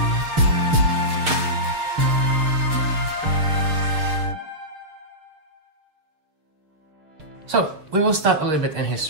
So we will start a little bit in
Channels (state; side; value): late; left; 6.6 ms